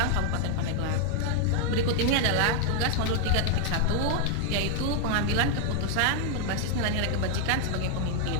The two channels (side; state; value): both; different; correlation 0.00